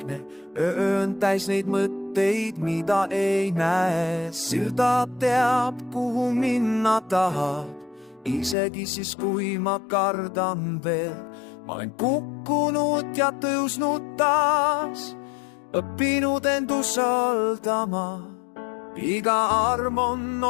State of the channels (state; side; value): drops out; right; at 8.6 s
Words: öö on täis neid mõtteid, mida ei näe. Silda teab, kuhu minna tahab, isegi siis, kui ma kardan veel. Ma olen kukkunud ja tõusnud taas, õppinud end usaldama. Iga arm on